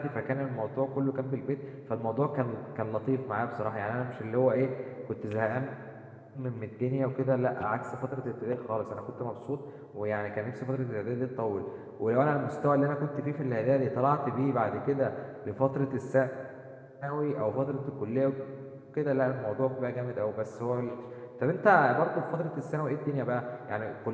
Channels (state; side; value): identical; both; correlation 1.00